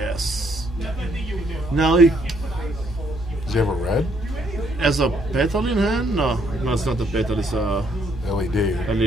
Now he, Does he have a red? as a petal in hand? No, it's not a petal. It's a LED.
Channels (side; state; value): both; normal; correlation 0.69